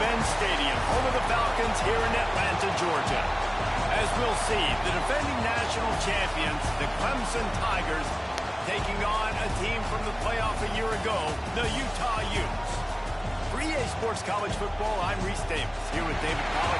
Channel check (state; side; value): identical; both; correlation 1.00